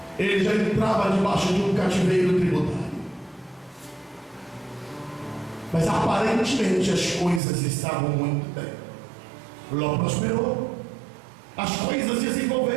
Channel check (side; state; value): left; drops out; at 7.4 s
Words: ele já entrava debaixo de um cativeiro tributário. Mas aparentemente as coisas estavam muito bem. Ló prosperou, as coisas